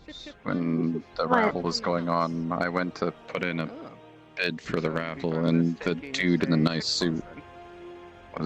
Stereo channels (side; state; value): both; identical; correlation 1.00